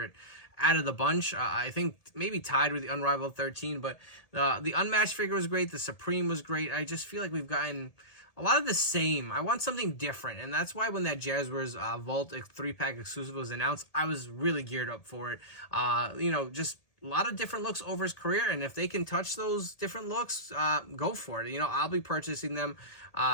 out of the bunch. I think maybe tied with the Unrivaled 13, but the Unmatched figure was great. The Supreme was great. I just feel like we've gotten a lot of the same. I want something different, and that's why when that Jazwares Vault 3-pack exclusive was announced, I was really geared up for it. You know, just a lot of different looks over his career, and if they can touch those different looks, go for it. You know, I'll be purchasing them.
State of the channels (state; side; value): late; right; 1.8 ms